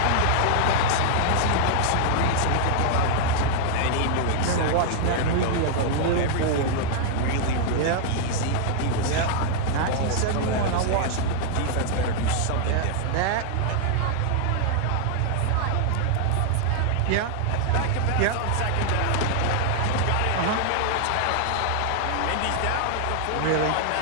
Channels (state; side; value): different; both; correlation 0.00